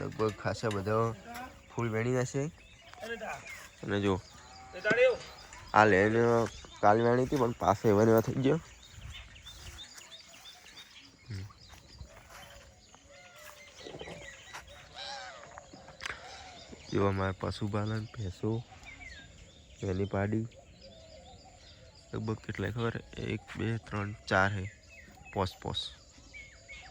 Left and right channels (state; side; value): identical; both; correlation 1.00